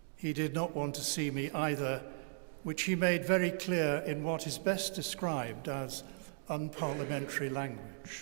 He did not want to see me either, which he made very clear in what is best described as unparliamentary language.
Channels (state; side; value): silent; left; digital silence